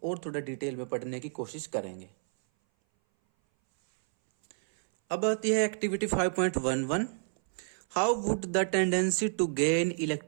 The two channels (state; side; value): silent; left; 58 dB below the other